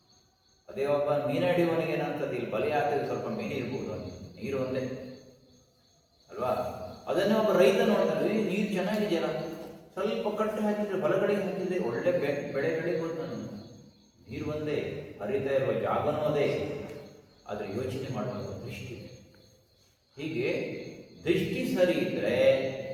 ಅದೇ ಒಬ್ಬ ಮೀನು ಹಿಡಿಯುವವನಿಗೆ ಏನಂತದ್ದು, ಇಲ್ಲಿ ಬಲಿ ಹಾಕಿದ್ರೆ ಸ್ವಲ್ಪ ಮೀನು ಇರ್ಬೋದು, ನೀರು ಒಂದೇ ಅಲ್ವಾ. ಅದನ್ನೇ ಒಬ್ಬ ರೈತ ನೋಡ್ತಾನೆ, ನೀರು ಚೆನ್ನಾಗಿದೆಯಲ್ಲ, ಸ್ವಲ್ಪ ಕಟ್ಟು ಹಾಕಿದ್ರೆ ಬಲಗಡೆಗೆ ಹಾಕಿದ್ರೆ ಒಳ್ಳೆ ಬೆಳೆ ಬೆಳಿಬೋದು. ನಾನು ನೀರು ಒಂದೇ, ಹರಿತಾ ಇರುವ ಜಾಗನೂ ಅದೇ, ಆದರೆ ಯೋಚನೆ ಮಾಡುವಂಥ ದೃಷ್ಟಿ. ಹೀಗೆ ದೃಷ್ಟಿ ಸರಿ ಇದ್ದರೆ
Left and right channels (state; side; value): identical; both; correlation 1.00